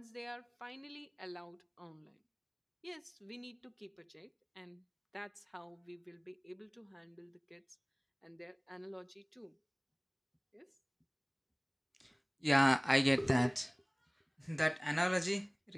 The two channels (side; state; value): both; identical; correlation 1.00